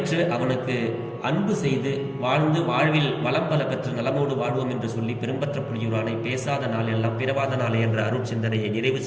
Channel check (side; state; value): both; identical; correlation 1.00